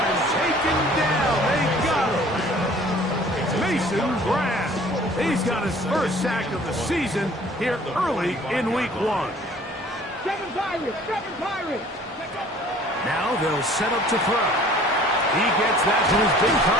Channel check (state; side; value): normal; both; correlation 0.52